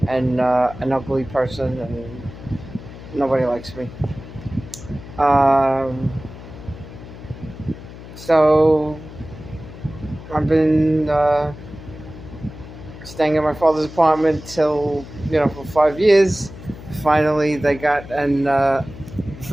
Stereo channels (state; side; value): noise; left; hum, 15 dB below the sound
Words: and an ugly person, and nobody likes me. Um, so I've been staying in my father's apartment till for 5 years. Finally, they got an